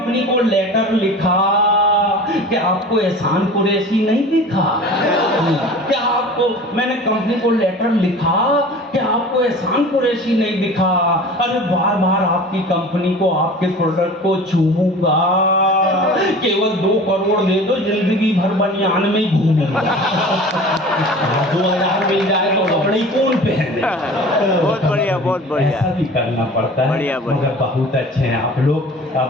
को लेटर लिखा कि आपको एहसान कुरैशी नहीं दिखा, क्या आपको आपको मैंने कंपनी को लेटर लिखा कि आपको एहसान कुरैशी नहीं दिखा। अरे बार बार आपकी कंपनी को, आपके प्रोडक्ट को चूमूंगा, केवल 2 करोड़ दे दो, जिंदगी भर बनियान में ही घूमूंगा। 2000 मिल जाए तो कपड़े कौन पहने। बहुत बढ़िया, बहुत बढ़िया। ऐसा भी करना पड़ता है। बढ़िया, बढ़िया। मगर बहुत अच्छे हैं आप लोग।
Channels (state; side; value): normal; both; correlation 0.40